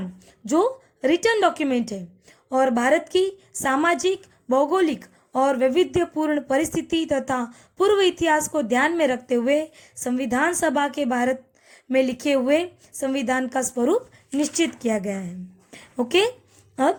जो रिटर्न डॉक्यूमेंट है और भारत की सामाजिक, भौगोलिक और वैविध्यपूर्ण परिस्थिति तथा पूर्व इतिहास को ध्यान में रखते हुए संविधान सभा के भारत में लिखे हुए संविधान का स्वरूप निश्चित किया गया है। ओके,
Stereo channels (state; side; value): identical; both; correlation 1.00